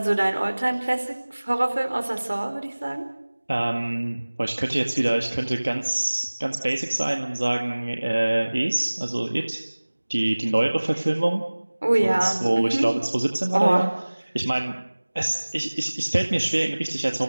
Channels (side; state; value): both; inverted; correlation -1.00